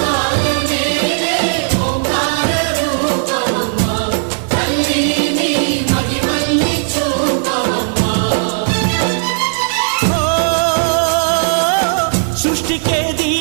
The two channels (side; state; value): left; silent; digital silence